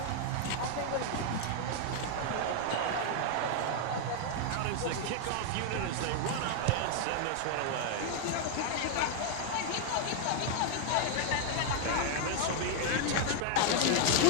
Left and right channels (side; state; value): both; different; correlation 0.00